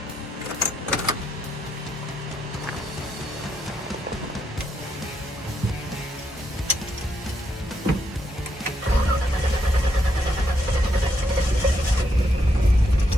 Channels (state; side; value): normal; both; correlation 0.78